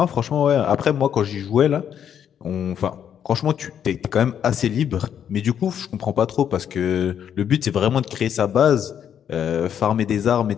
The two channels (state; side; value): quieter; right; 8.9 dB